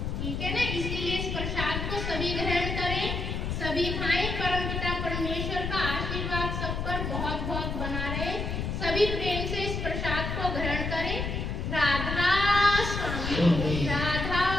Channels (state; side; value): noise; left; rumble, 3 dB below the sound